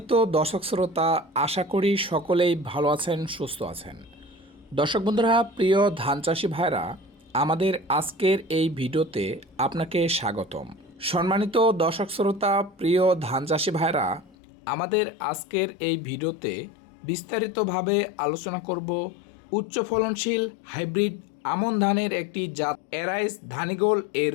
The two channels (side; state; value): right; drops out; at 14.4 s